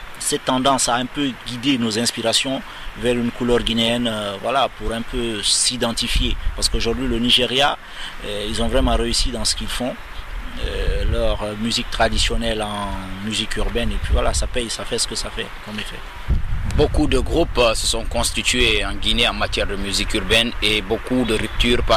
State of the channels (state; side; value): identical; both; correlation 1.00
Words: cette tendance à un peu guider nos inspirations vers une couleur guinéenne, voilà, pour un peu s'identifier. Parce qu'aujourd'hui le Nigeria, ils ont vraiment réussi dans ce qu'ils font. Leur musique traditionnelle en musique urbaine, et puis voilà, ça paye, ça fait ce que ça fait comme effet. Beaucoup de groupes se sont constitués en Guinée en matière de musique urbaine et beaucoup de ruptures